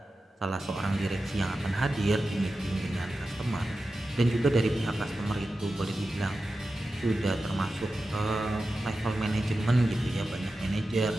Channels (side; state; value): both; normal; correlation 0.93